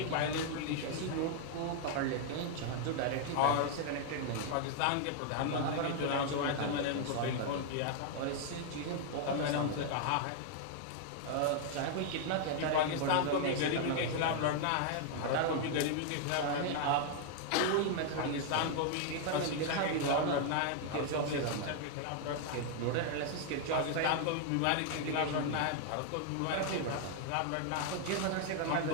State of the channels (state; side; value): different; both; correlation 0.00